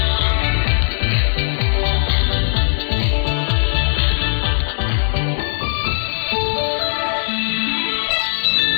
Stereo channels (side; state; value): right; silent; digital silence